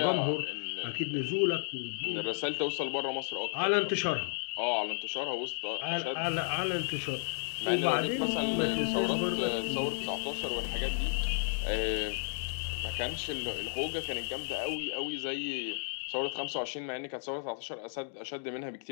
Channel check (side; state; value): right; silent; digital silence